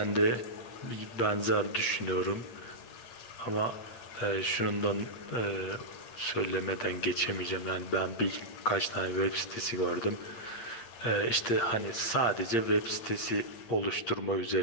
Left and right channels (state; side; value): late; right; 8.7 ms